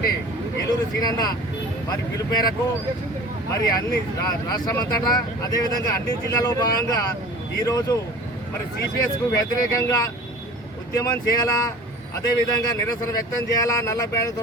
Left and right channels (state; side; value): normal; both; correlation 0.41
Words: ఏలూరు సీనన్న వారి పిలుపు మేరకు మరి అన్ని రాష్ట్రమంతటా అదేవిధంగా అన్ని జిల్లాలో భాగంగా ఈరోజు మరి సిపిఎస్కు వ్యతిరేకంగా ఉద్యమం చేయాలా, అదేవిధంగా నిరసన వ్యక్తం చేయాలా, నల్ల బ్యానర్తో